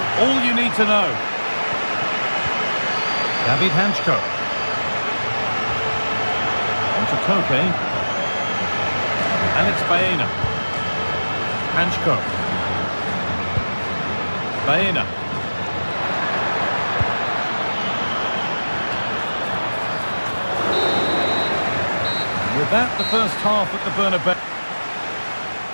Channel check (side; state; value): both; inverted; correlation -1.00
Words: all you need to know. David Hanchko. On to Koke. And it's Baena. Hanchko. Baena. With that, the first half at the Bernabeu.